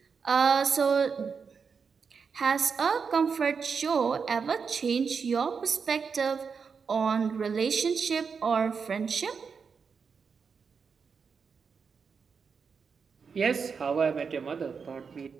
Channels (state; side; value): quieter; left; 5.8 dB